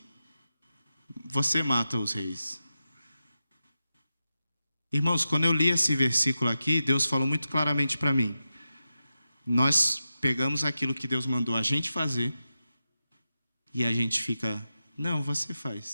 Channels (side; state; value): both; inverted; correlation -0.91